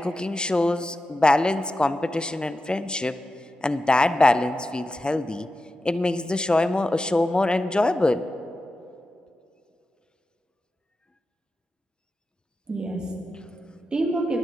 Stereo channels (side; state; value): both; normal; correlation 0.91